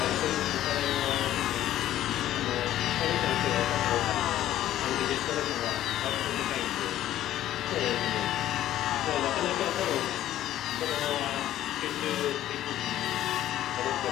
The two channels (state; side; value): quieter; right; 12.9 dB